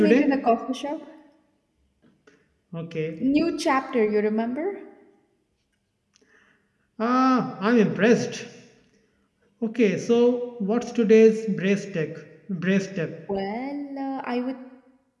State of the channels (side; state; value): both; identical; correlation 1.00